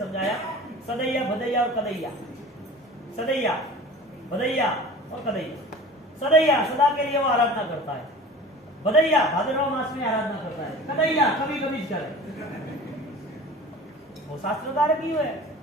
सदैया, भदैया और कदैया। सदैया, भदैया और कदैया। सदैया सदा के लिए वो आराधना करता है, भदैया भाद्रव मास में आराधना करता है, कदैया कभी कभी करे। वो शास्त्रकार की है।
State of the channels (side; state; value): both; normal; correlation 0.39